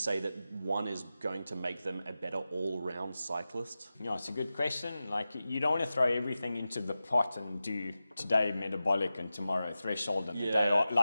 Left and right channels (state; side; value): inverted; both; correlation -0.94